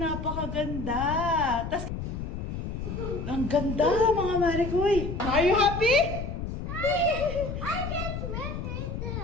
Tas, ang ganda, mga marikoy. Are you happy? I can swim right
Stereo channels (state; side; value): noise; left; rumble, 5 dB below the sound